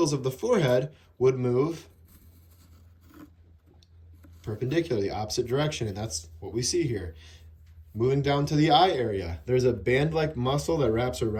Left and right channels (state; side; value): identical; both; correlation 1.00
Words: of the forehead would move perpendicular, the opposite direction, and that's what we see here. Moving down to the eye area, there's a band-like muscle that wraps